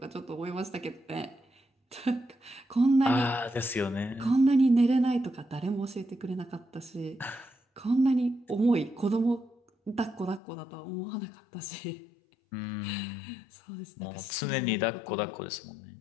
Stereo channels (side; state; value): right; drops out; at 10.4 s